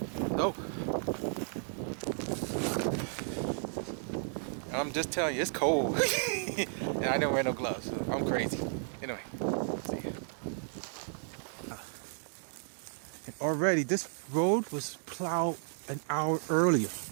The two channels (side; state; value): left; silent; digital silence